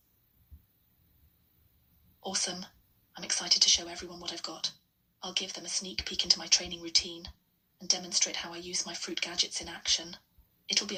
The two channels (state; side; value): identical; both; correlation 1.00